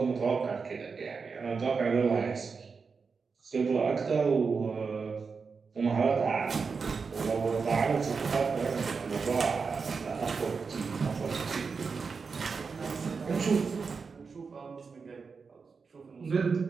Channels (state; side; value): quieter; left; 5.1 dB